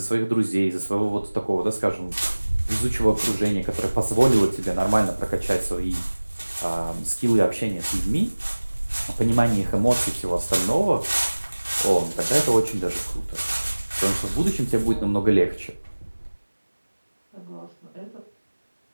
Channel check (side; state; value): both; inverted; correlation -1.00